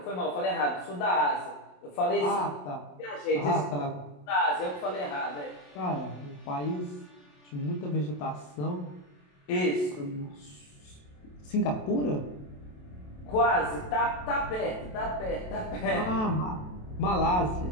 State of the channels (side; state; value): right; late; 27 ms